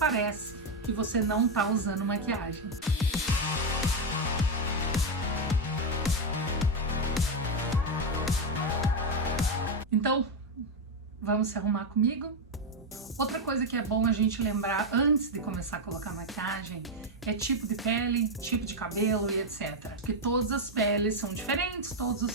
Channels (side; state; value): both; normal; correlation 0.05